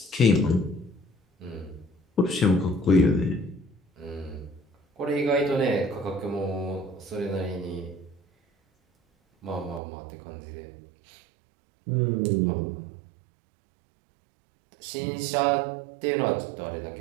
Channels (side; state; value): left; drops out; at 9.8 s